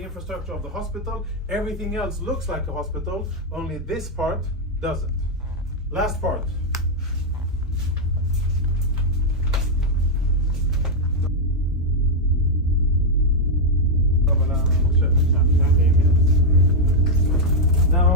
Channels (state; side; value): normal; both; correlation -0.01